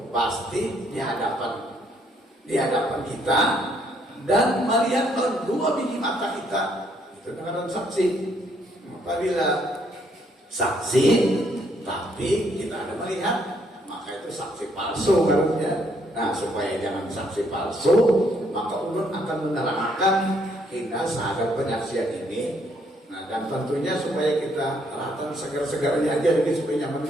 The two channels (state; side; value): normal; both; correlation 0.69